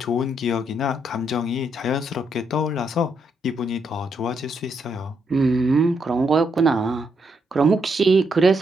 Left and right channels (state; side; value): normal; both; correlation 0.78